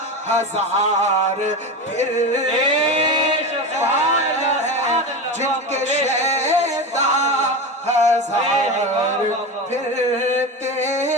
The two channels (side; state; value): both; normal; correlation 0.23